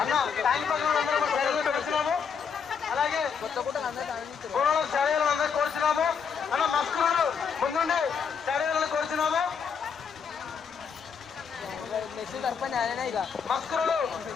అలాగే బోనాలు శారీలు అందరూ కోరుచున్నాము అన్న మస్కులు ముందుండి శారీలను కోరుచున్నాము మస్కులు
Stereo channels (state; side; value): quieter; right; 6.5 dB